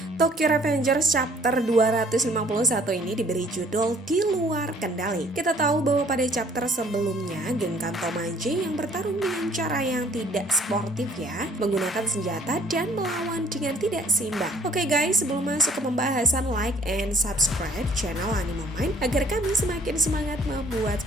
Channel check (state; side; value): normal; both; correlation 0.58